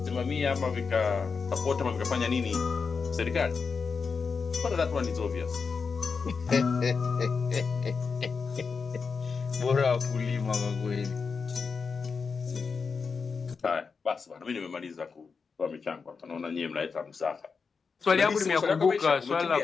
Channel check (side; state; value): right; quieter; 5.2 dB